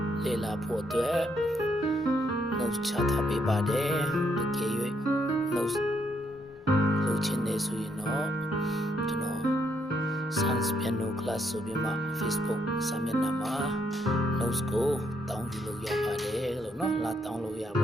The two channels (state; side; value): normal; both; correlation 0.74